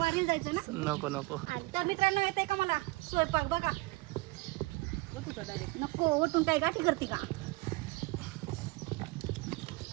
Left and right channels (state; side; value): quieter; left; 23.0 dB